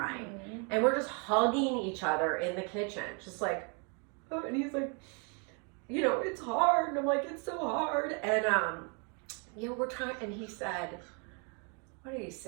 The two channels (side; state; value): left; quieter; 36.5 dB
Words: Mm-hmm. And we're just hugging each other in the kitchen. Just like, oh, and he's like, you know, it's hard. And I'm like, it's so hard. And, you know, we're trying, and he said, what did he